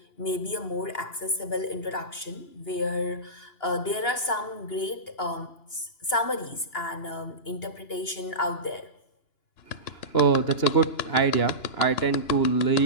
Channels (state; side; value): late; right; 2.9 ms